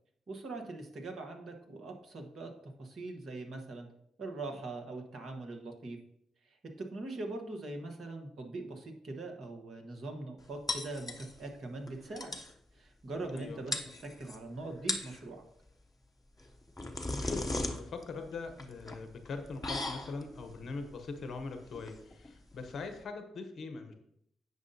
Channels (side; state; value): both; normal; correlation 0.75